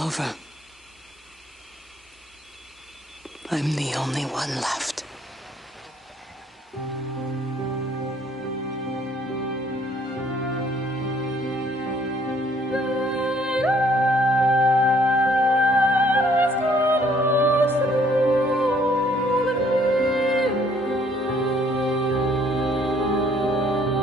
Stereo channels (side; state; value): both; normal; correlation 0.63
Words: I'm the only one left.